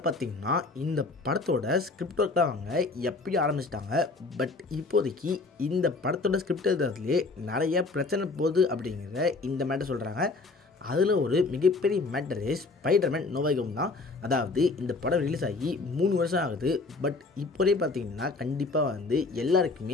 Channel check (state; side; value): quieter; right; 3.7 dB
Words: பார்த்திங்கன்னா இந்த படத்தோட ஸ்கிரிப்ட் ஒர்க்லாம் அவங்க எப்படி ஆரம்பிச்சிட்டாங்க. பட் இப்போதைக்கு இந்த படத்தோட ஸ்கிரிப்ட் எழுதுறதுலேயே நிறைய பிரச்சனை போகுது அப்படிங்கிற இந்த மேட்டர் சொல்கிறாங்க. அதில் ஒரு மிகப்பெரிய matter Spiderman no way home தான். அதாவது இந்த படம் ரிலீஸ் ஆகி 3 வருஷம் ஆகுது. பட் இப்போதே பார்த்திங்கன்னா கண்டிப்பாக